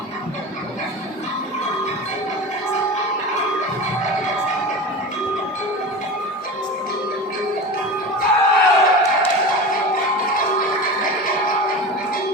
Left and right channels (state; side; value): normal; both; correlation 0.29